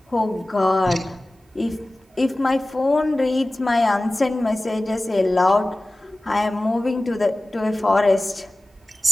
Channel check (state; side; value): normal; both; correlation 0.97